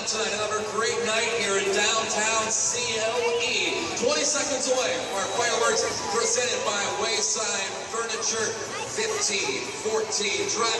tonight. Another great night here in downtown CLE. 20 seconds away from our fireworks presented by Wayside Furniture. 15, 14,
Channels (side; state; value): both; identical; correlation 1.00